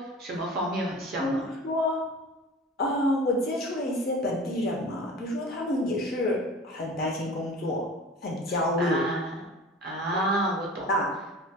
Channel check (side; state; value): both; normal; correlation 0.39